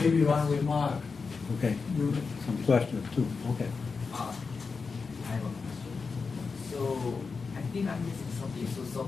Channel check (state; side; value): quieter; right; 4.8 dB